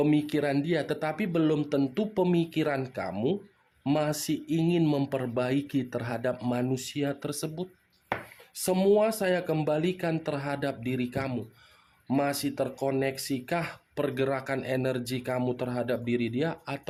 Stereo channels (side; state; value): both; identical; correlation 1.00